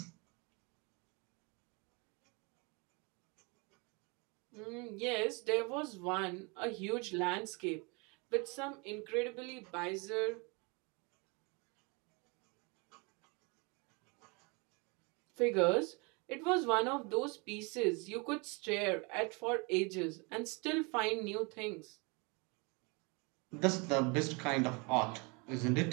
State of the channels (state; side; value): quieter; left; 30.2 dB